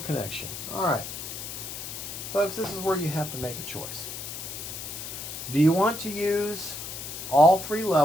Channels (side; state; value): left; noise; hiss, 8 dB below the sound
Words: connection. All right. Folks, this is where you have to make a choice. Do you want to use all 3